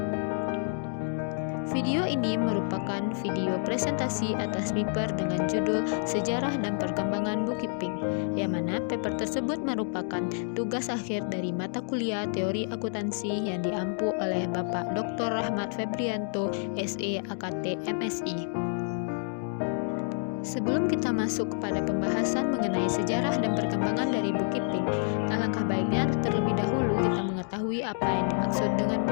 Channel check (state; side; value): silent; right; 59 dB below the other